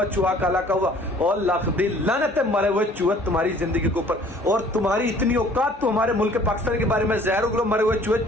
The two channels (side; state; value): both; normal; correlation 0.54